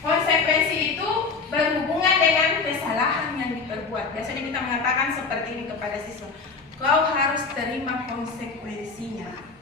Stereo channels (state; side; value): quieter; right; 4.7 dB